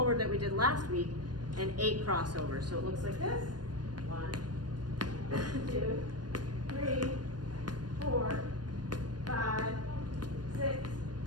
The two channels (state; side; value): late; left; 0.69 ms